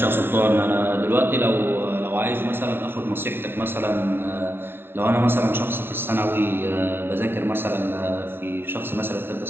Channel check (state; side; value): late; left; 0.11 ms